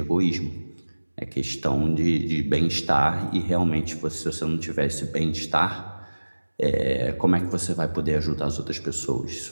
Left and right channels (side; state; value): both; inverted; correlation -1.00